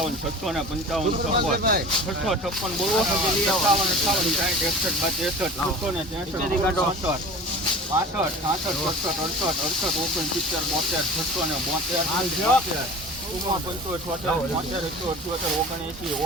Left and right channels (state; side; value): normal; both; correlation 0.38